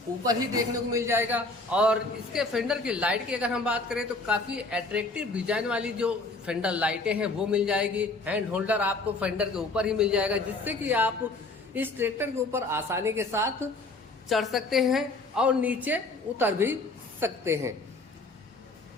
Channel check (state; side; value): quieter; right; 3.2 dB